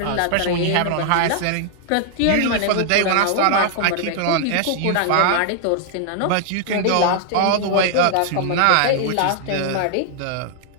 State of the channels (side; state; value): both; different; correlation 0.00